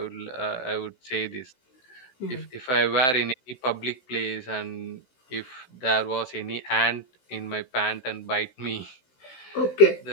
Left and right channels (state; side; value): late; right; 16 ms